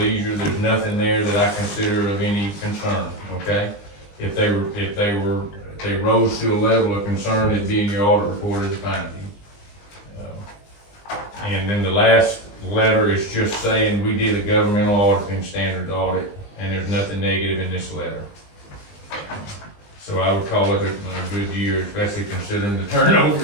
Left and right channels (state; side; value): late; right; 20 ms